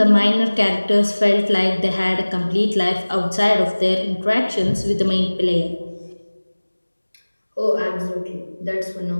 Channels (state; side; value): inverted; both; correlation -1.00